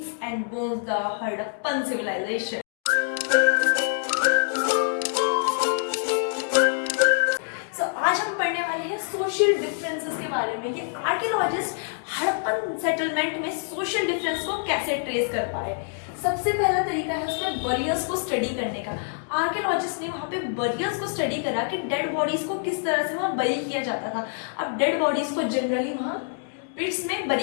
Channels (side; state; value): right; silent; digital silence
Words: and bones, the Harappan civilization. So आज हम पढ़ने वाले हैं social differences के बारे में कि आर्कियोलॉजिस्ट हड़प्पन सेटलमेंट में सोशल डिफरेंस को कैसे ट्रेस कर पाए। सबसे पहला तरीका है उसमें बरियर्स को स्टडी करने का। आर्कियोलॉजिस्ट ने वहाँ पे बरियर्स को स्टडी करा कि डेड बॉडीज को किस तरह से वहाँ बरी किया जाता था। अब डेड बॉडीज को जनरली वहाँ पिट्स में बरी